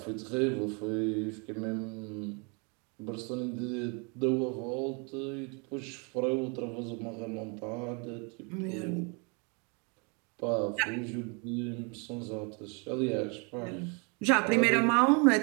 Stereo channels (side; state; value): left; quieter; 33.8 dB